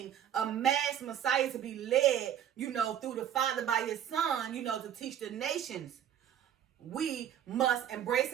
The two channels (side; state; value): left; quieter; 9.9 dB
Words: a mass Messiah to be led, through the Father by his Son, to teach the nations, we must embrace